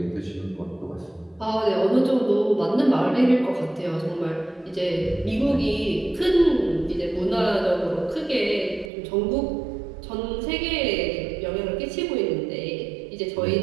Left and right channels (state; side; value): drops out; left; at 8.9 s